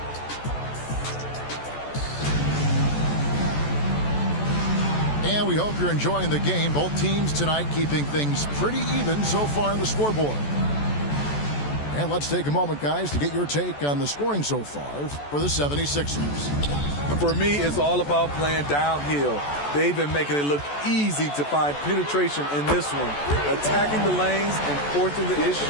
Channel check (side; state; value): right; late; 14 ms